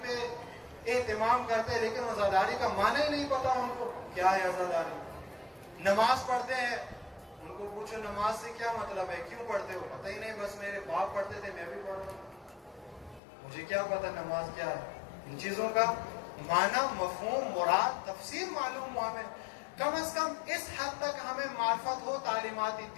پہ اہتمام کرتے ہیں لیکن عزاداری کا معنی ہی نہیں پتا ان کو کیا ہے عزاداری. نماز پڑھتے ہیں, ان کو پوچھو نماز سے کیا مطلب ہے, کیوں پڑھتے ہو, پتہ ہی نہیں, بس میرے باپ پڑھتے تھے میں بھی پڑھ رہا ہوں, مجھے کیا پتا نماز کیا ہے. ان چیزوں کا معنی, مفہوم, مراد, تفسیر معلوم ہو ہمیں. کم از کم اس حد تک ہمیں معرفت ہو تعلیمات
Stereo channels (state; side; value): drops out; right; at 13.2 s